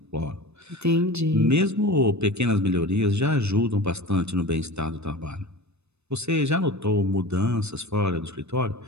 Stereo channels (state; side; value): late; left; 0.81 ms